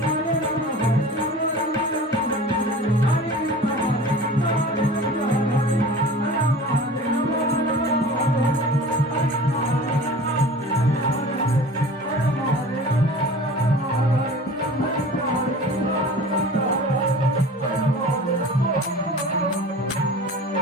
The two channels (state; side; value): normal; both; correlation 0.40